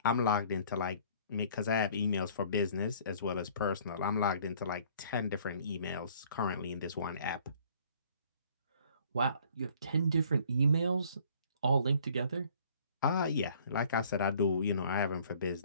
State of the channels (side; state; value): both; inverted; correlation -0.56